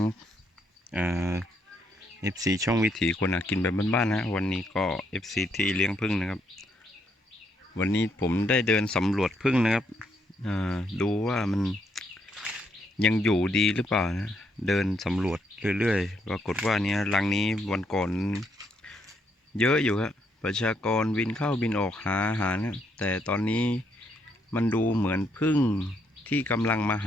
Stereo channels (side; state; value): both; normal; correlation 0.75